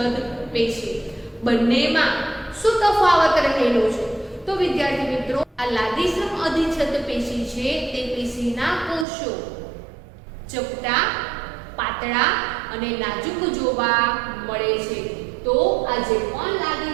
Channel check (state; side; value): drops out; left; at 9.1 s